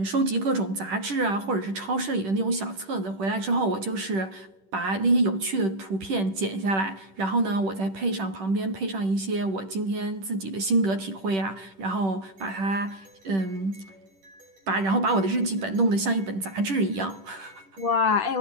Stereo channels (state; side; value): late; left; 10 ms